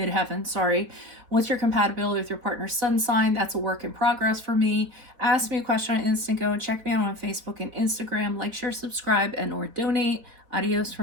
sorry. What's your compatibility with your partner's sun sign? That's a work in progress for me. Ask me a question on Instant Go. Check me out on Facebook and Instagram. Like, share, subscribe, and or donate. Adios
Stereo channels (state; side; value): late; left; 4.1 ms